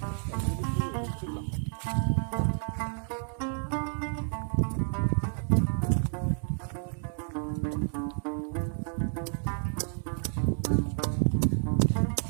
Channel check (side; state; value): left; silent; 58 dB below the other